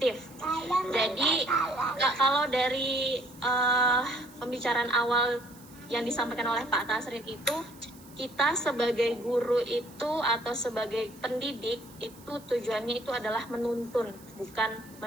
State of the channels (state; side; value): noise; right; hiss, 23 dB below the sound